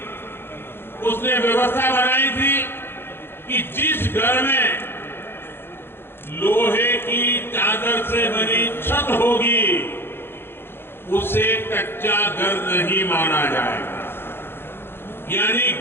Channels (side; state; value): right; late; 0.11 ms